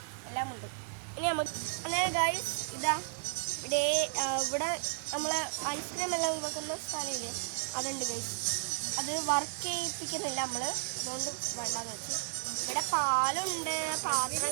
എല്ലാം ഉണ്ട്. ഇനി നമുക്ക് അങ്ങനെ ഗൈസ് ഇതാ ഇവിടെ നമ്മൾ ഐസ്ക്രീം എല്ലാം വെക്കുന്ന സ്ഥലമില്ലേ, അതുണ്ട് ഗൈസ്. അത് വർക്ക് ചെയ്യിപ്പിക്കുന്നില്ല നമ്മൾ, അതുകൊണ്ട് വേണ്ടാന്ന് വെച്ചു. ഇവിടെ പാലുണ്ട്,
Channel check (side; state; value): left; silent; digital silence